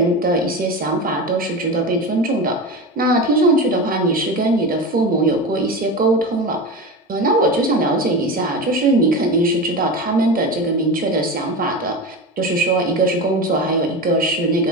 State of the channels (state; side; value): normal; both; correlation 0.25